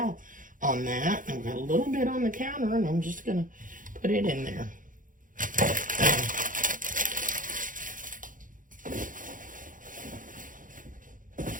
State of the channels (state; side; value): late; left; 0.39 ms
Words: on that. I've got a little bit on the counter, and I'm just going to put it in there.